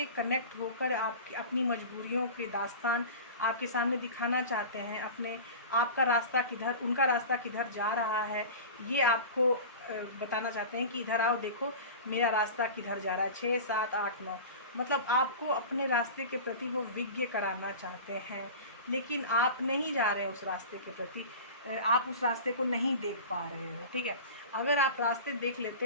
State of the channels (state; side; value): inverted; both; correlation -0.34